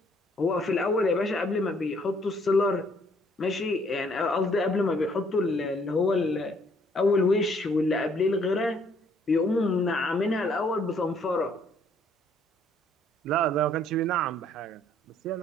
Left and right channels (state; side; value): normal; both; correlation 0.64